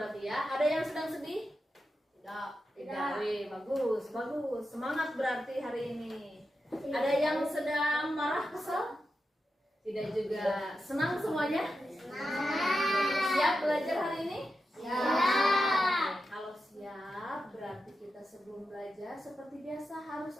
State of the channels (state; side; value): normal; both; correlation 0.89